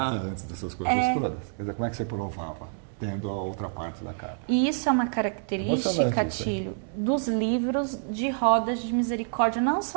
antes dessas coisas todas. Quer dizer, como é que você provava? Tendo a outra parte da carta. E isso é uma característica, Tílio, dos livros de rodas de misericórdia, não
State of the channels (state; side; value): silent; left; digital silence